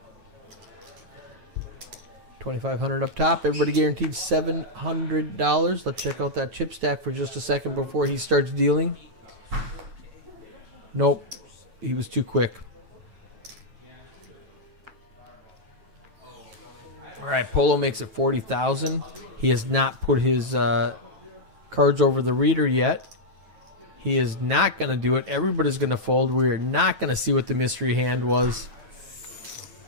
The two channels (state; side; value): late; left; 9.2 ms